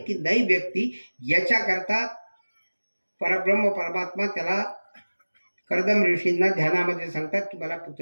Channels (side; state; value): both; inverted; correlation -1.00